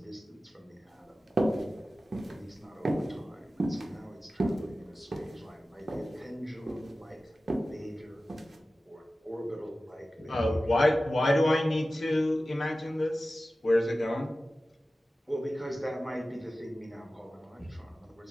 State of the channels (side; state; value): both; normal; correlation 0.95